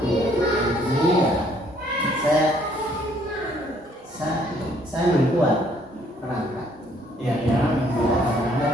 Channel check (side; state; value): both; normal; correlation 0.64